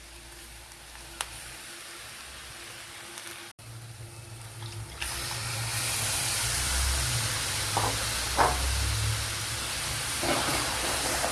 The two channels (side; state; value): both; identical; correlation 1.00